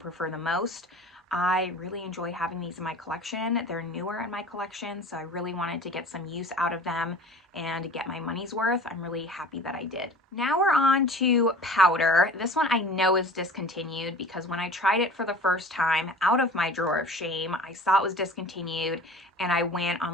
the most. I really enjoy having these in my collection. They're newer in my collection, so I really wanted to get some use out of them and get my money's worth. I'm really happy that I did. Now we're on to powder. This one I know is discontinued because when I tried it for the first time out of my drawer of shame, I saw it was discontinued and I went on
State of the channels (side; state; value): both; normal; correlation 0.42